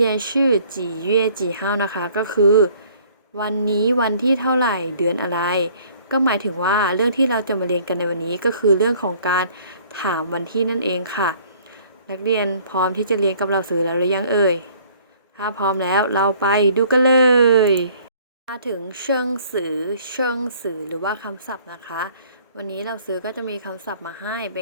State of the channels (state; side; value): inverted; both; correlation -0.56